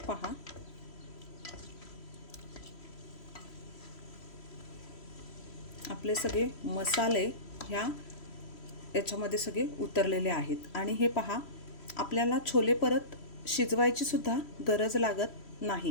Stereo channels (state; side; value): late; right; 3.0 ms